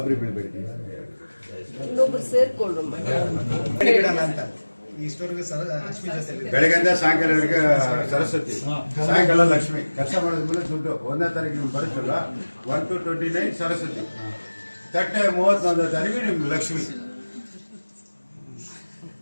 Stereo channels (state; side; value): inverted; both; correlation -1.00